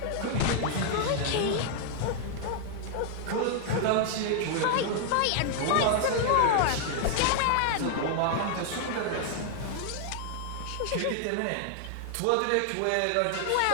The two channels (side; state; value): both; different; correlation 0.00